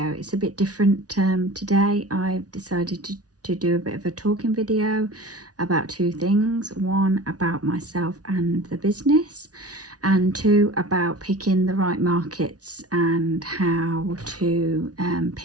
It's a bit different today. I've decided to do a bit of a talking video about two things. One, about myself and the business, and two, about picking the right markets and how to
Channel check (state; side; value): late; left; 0.68 ms